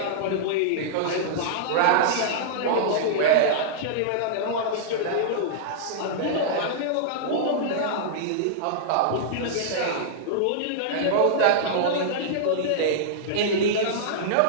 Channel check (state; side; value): different; both; correlation -0.02